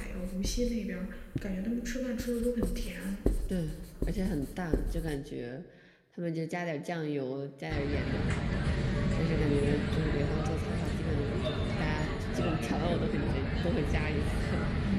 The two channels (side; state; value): both; identical; correlation 1.00